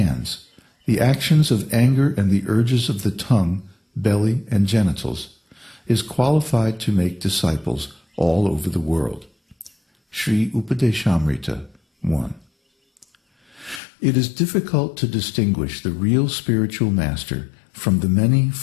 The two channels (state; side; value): drops out; right; at 13.8 s